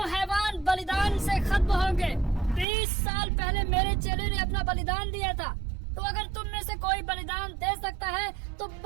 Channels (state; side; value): drops out; left; at 2.7 s